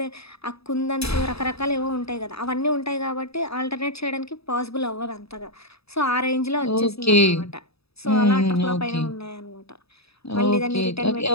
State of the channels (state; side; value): late; right; 0.78 ms